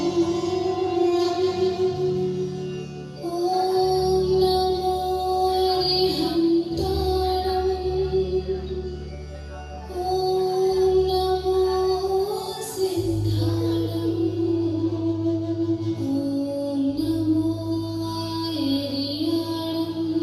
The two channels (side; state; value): both; identical; correlation 1.00